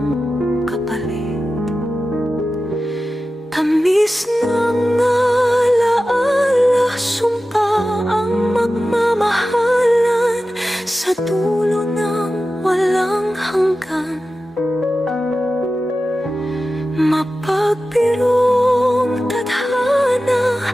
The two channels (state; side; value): normal; both; correlation 0.94